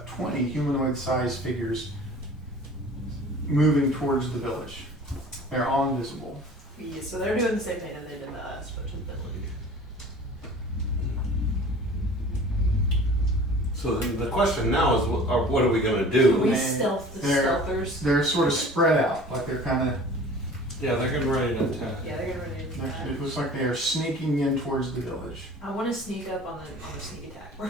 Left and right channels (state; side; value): normal; both; correlation 0.44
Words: 20 humanoid-sized figures moving towards the village. They're all invisible. Yeah, so they're doing the same thing that they did to us, but to the village. So the question now is, what are we gonna do? We Man, stealth the they're- stealthers. They're sort of spread out, like they're kind of. Yeah, they're getting ready to attack. Yeah, they're getting ready to do that. It looks like they are sneaking in towards the village. I want to sneak up on the sneak attack